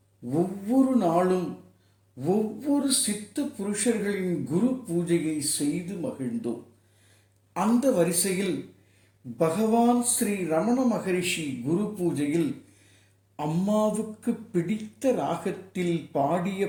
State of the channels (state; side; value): identical; both; correlation 1.00